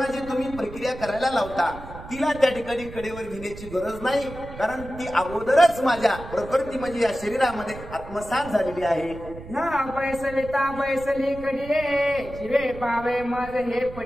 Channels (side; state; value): right; noise; rumble, 14 dB below the sound